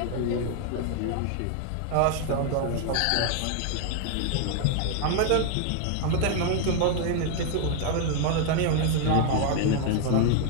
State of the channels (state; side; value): different; both; correlation 0.00